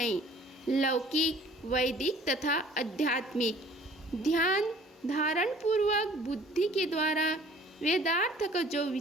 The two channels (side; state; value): both; normal; correlation 0.52